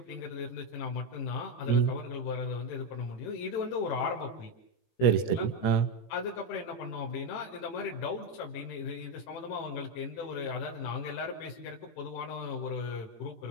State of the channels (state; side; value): late; right; 17 ms